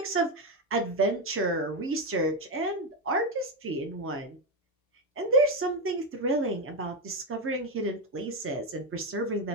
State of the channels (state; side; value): normal; both; correlation 0.09